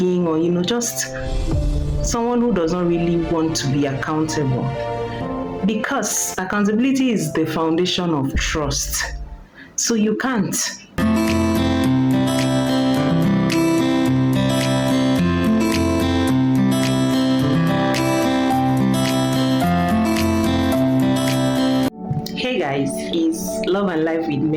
or just someone who does not really want to be accountable. Because accountability is the foundation of trust. So you can't. Hey guys, it's Love and Life with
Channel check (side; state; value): both; identical; correlation 1.00